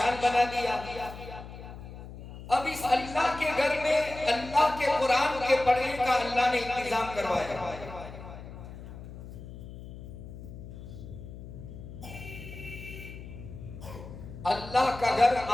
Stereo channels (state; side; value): noise; left; hum, 13 dB below the sound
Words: बना दिया, अब इस अल्लाह के घर में अल्लाह के कुरान के पढ़ने का अल्लाह ने इंतजाम करवाया। अल्लाह का घर